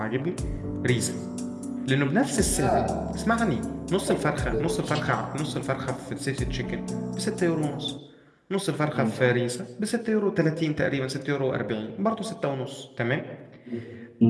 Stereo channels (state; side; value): identical; both; correlation 1.00